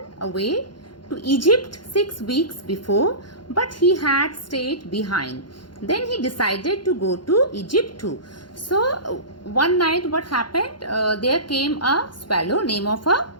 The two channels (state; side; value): late; right; 0.71 ms